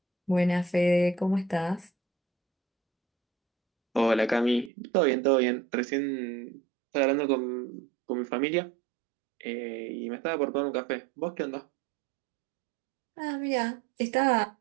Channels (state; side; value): drops out; left; at 4.7 s